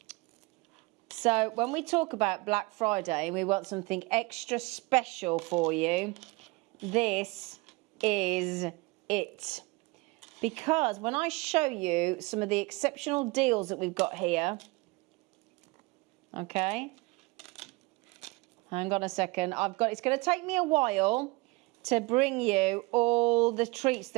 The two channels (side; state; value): left; quieter; 25.0 dB